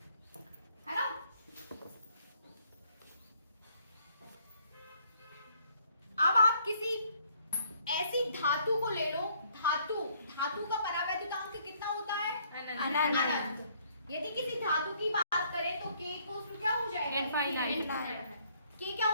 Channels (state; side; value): inverted; both; correlation -0.65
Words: है ना। अब आप किसी ऐसी धातु को ले लो, धातु का परावैद्युतांक कितना होता है? अनंत। यदि किसी धातु की बात करें तो k इक्वल्स टू क्या हो जाएगा? इनफाइनाइट। k क्या